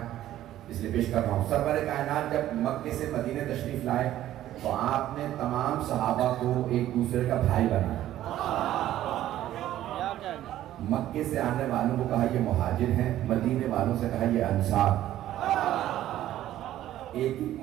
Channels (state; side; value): quieter; left; 13.1 dB